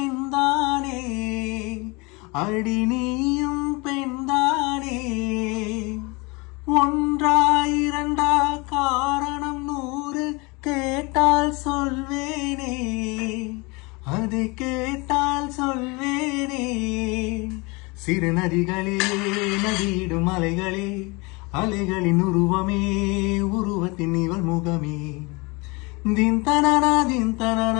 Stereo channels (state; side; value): quieter; right; 26.8 dB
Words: அடி நீயும் பெண்தானே, ஒன்றா இரண்டா காரணம் 100 கேட்டால் சொல்வேனே, அதை கேட்டால் சொல்வேனே. சிறு நதிகளே நதியிடும் அலைகளே, அலைகளின் உருவமே உருவத்தின் இவள் முகமே. தின் தனனா தின்